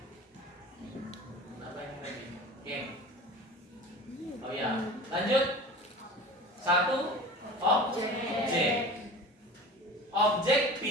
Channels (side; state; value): both; normal; correlation 0.37